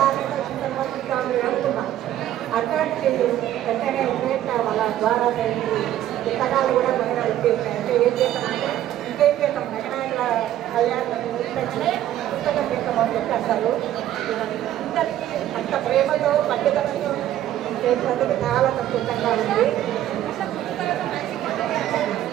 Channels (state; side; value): quieter; left; 12.5 dB